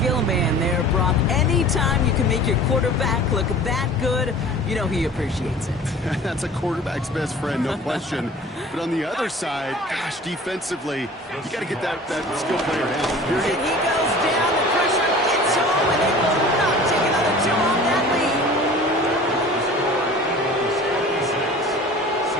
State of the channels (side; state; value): both; normal; correlation 0.43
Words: man there, Brock. Anytime you can make your quarterback look that good, you know he appreciates it. That's a quarterback's best friend, no question. But on the other side, gosh, defensively, you got to get that skill player down. And he goes down, the pressure gets home, and they will not take another two off that lead.